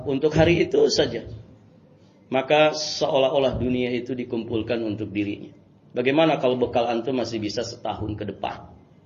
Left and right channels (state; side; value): identical; both; correlation 1.00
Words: untuk hari itu saja, maka seolah-olah dunia itu dikumpulkan untuk dirinya. Bagaimana kalau bekal antum masih bisa setahun ke depan?